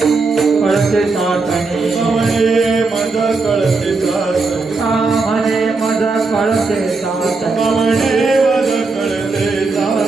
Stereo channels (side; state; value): left; quieter; 3.9 dB